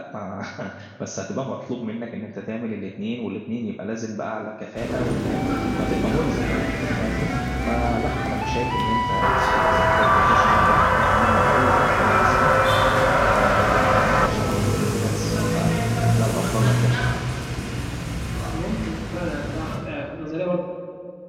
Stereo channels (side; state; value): both; identical; correlation 1.00